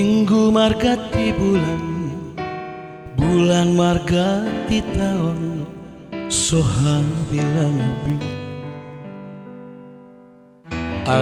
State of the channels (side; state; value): both; identical; correlation 1.00